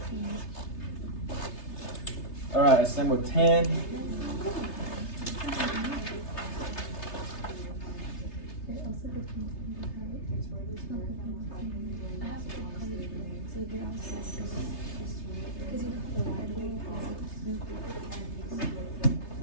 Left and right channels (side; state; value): right; late; 3.3 ms